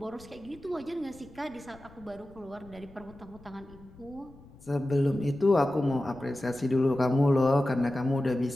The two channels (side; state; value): left; noise; rumble, 23 dB below the sound